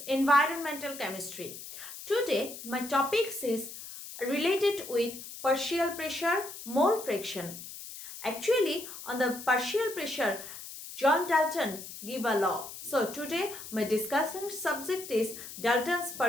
chemistry. Today my topics is related with partial pressure, mole fraction. Actually, on the partial pressure, John Dalton gave a law. So today my discussion subject is Dalton's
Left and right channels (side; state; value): left; noise; hiss, 12 dB below the sound